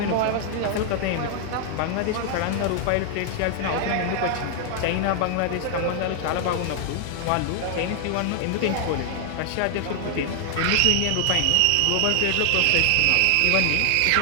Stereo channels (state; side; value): different; both; correlation 0.00